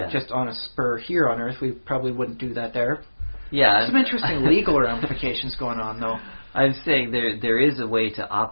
just on a spur here on Earth. We probably wouldn't do that there. Yeah, some interesting legal ramifications going on, though. I'm saying there is a way to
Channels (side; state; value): both; inverted; correlation -1.00